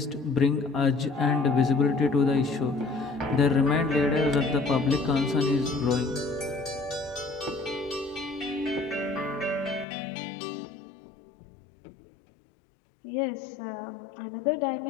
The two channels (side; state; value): right; drops out; at 9.9 s